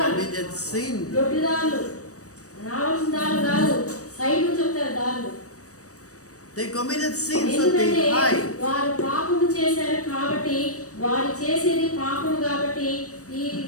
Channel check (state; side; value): late; right; 0.66 ms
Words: sin. దొడ్డిదారులు, రావాల్సిన దారులు కాదు, సైడ్ చెప్తారు దారులు. They committed sin, so ఎందుకంటే they hide. వారు పాపము చేశారు కాబట్టి, వారు చేసేది పాపము కాబట్టి ఈ